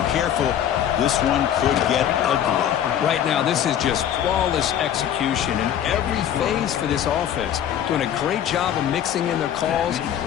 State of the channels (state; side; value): quieter; right; 10.1 dB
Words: careful, this one could get ugly. Right now, this is just flawless execution in every phase for this offense. Doing a great job of mixing in their calls.